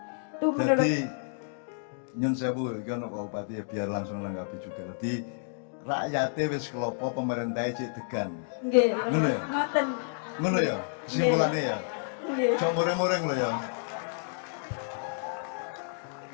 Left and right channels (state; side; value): silent; right; digital silence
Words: Itu menurut Jadi nyun sewu iki ono Bupati ya biar langsung nanggapi juga. Jadi rakyatnya wis kelopo pemerintahnya cek degan. nggih, Ngono ya? ngoten. Ngono ya? Kesimpulannya ya. Nggih. Cok mureng-mureng lho ya.